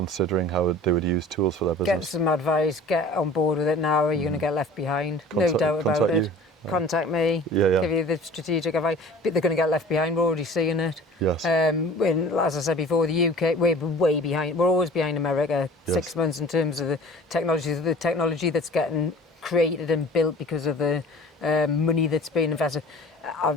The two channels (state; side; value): normal; both; correlation 0.45